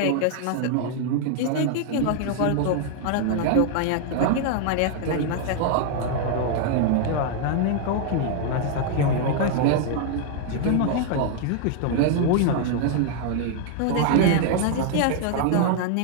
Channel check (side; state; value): both; different; correlation 0.00